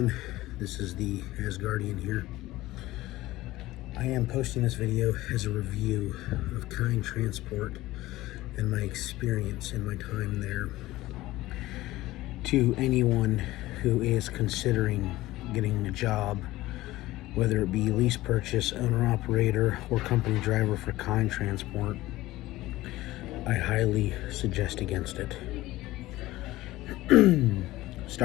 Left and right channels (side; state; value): right; quieter; 17.4 dB